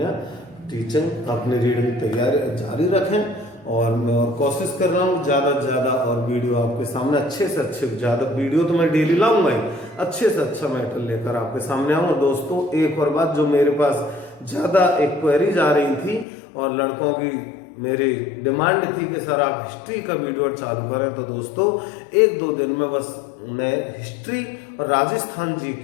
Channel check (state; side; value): drops out; right; at 16.2 s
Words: टीचिंग, अपनी रीडिंग तैयारी जारी रखें। और मैं और कोशिश कर रहा हूँ ज़्यादा से ज़्यादा और वीडियो आपके सामने अच्छे से अच्छे, ज़्यादा वीडियो तो मैं डेली लाऊंगा ही, अच्छे से अच्छा मैटर लेकर आपके सामने आऊँगा। दोस्तों एक और बात, जो मेरे पास ज़्यादा एक क्वेरीज आ रही थी और लड़कों की मेरी डिमांड थी कि सर आप हिस्ट्री का वीडियो चालू करें, तो दोस्तों 1-2 दिन में बस मैं हिस्ट्री और राजस्थान